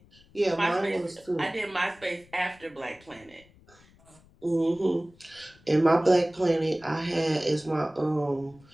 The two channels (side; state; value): left; noise; rumble, 28 dB below the sound